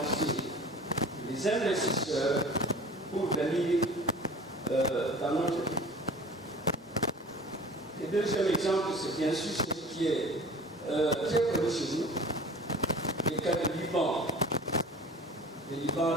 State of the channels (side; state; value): both; normal; correlation 0.43